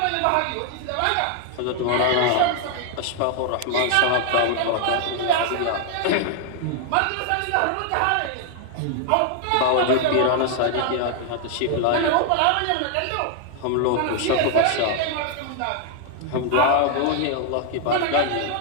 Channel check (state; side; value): different; both; correlation 0.00